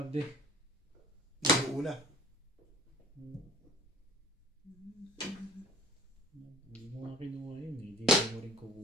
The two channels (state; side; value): normal; both; correlation 0.46